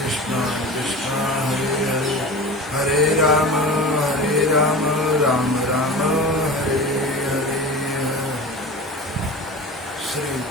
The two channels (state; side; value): normal; both; correlation 0.33